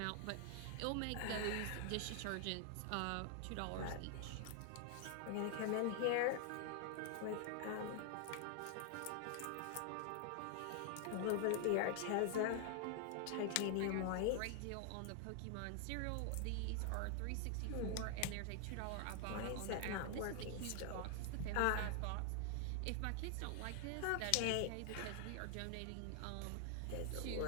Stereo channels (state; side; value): different; both; correlation 0.00